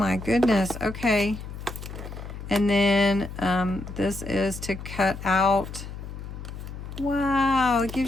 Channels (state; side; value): noise; left; hum, 10 dB below the sound